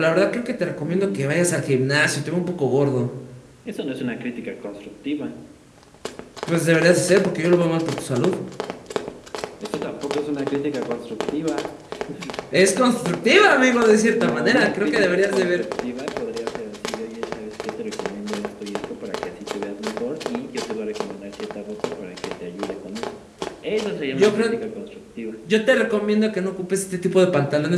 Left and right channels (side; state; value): both; identical; correlation 1.00